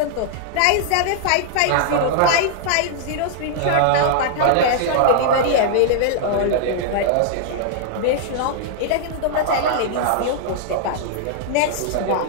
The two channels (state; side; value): different; both; correlation -0.01